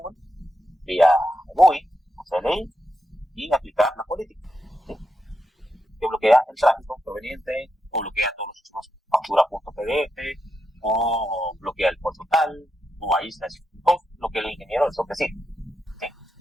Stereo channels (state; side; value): normal; both; correlation 0.85